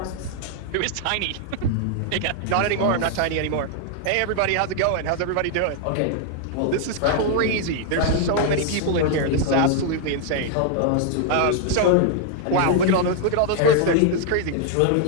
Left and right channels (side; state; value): both; different; correlation 0.00